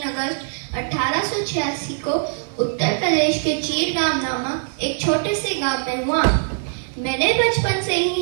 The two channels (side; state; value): left; silent; digital silence